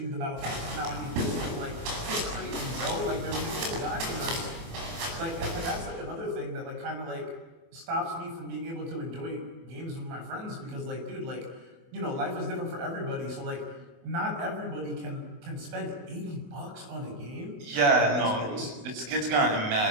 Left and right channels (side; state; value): left; late; 24 ms